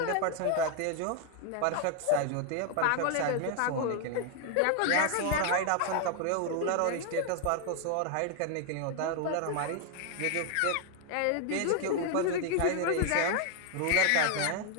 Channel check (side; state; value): both; different; correlation 0.00